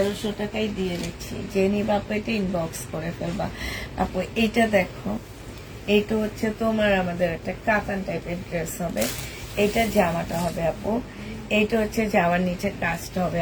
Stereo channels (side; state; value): both; identical; correlation 1.00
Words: টাকায় দিয়ে দিচ্ছি, যে নিবা আপু এটা ইনবক্স করে ফেলবা আপু। এইটা দেখো, এইটা হচ্ছে তোমার আমাদের একটা কাতান টাইপের ড্রেস হবে। এইটা জামাটা হবে আপু, এইটা হচ্ছে জামার নিচে কাজটা হবে